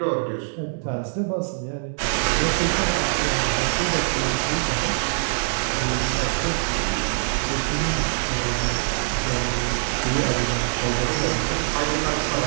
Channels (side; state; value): left; silent; digital silence